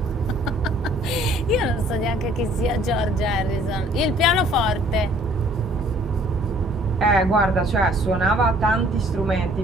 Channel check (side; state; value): both; normal; correlation 0.58